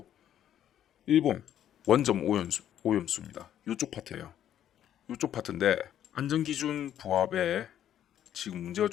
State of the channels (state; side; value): quieter; right; 10.7 dB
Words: 일본 원점 오염수입니다. 요쪽 파트예요. 요쪽 파트인데 안전기준 부합에 지금 문제가